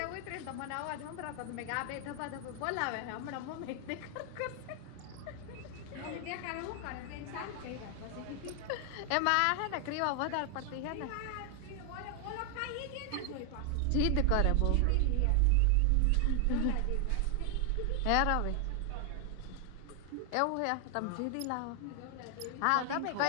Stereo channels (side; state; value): both; different; correlation 0.00